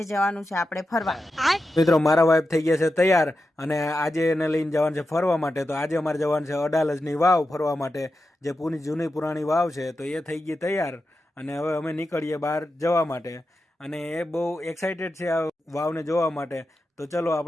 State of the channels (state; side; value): normal; both; correlation 0.90